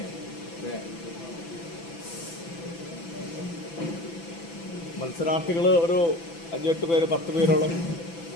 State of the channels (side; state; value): right; late; 6.0 ms